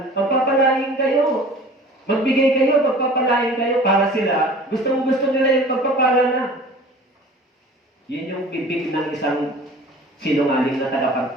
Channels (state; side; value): normal; both; correlation 0.44